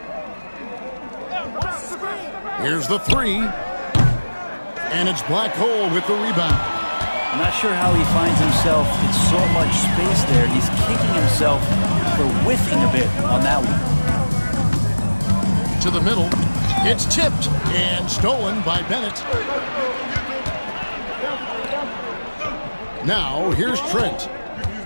Here's the 3. And it's Black Hole with the rebound. I'm not sure how he finds himself in so much space there. He's kicking himself for whiffing a bit on that one. To the middle. It's tipped and stolen by Bennett. Now here's Trent.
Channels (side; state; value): both; inverted; correlation -1.00